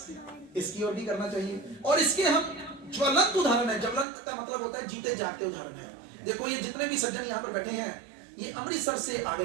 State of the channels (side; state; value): left; drops out; at 4.0 s